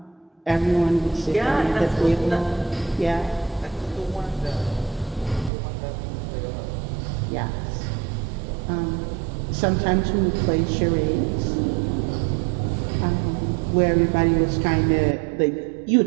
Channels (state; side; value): drops out; left; at 5.5 s